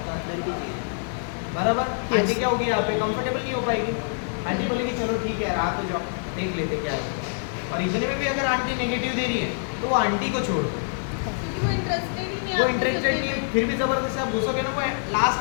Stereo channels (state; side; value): silent; right; digital silence